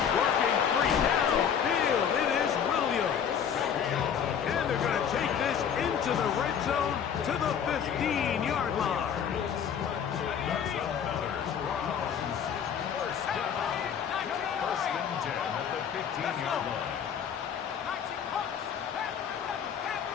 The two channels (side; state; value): right; quieter; 8.0 dB